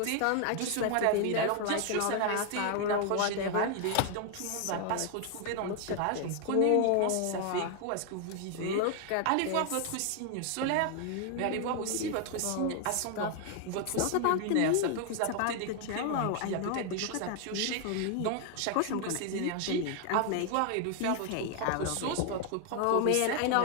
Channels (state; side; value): different; both; correlation 0.00